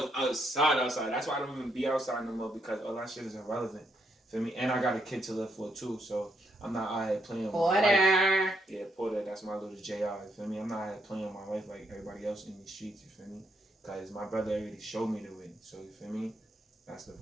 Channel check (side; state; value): both; normal; correlation 0.76